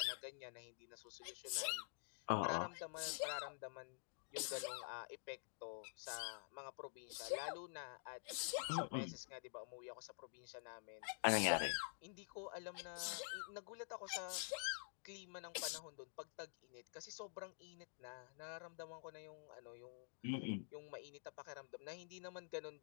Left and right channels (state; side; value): silent; right; digital silence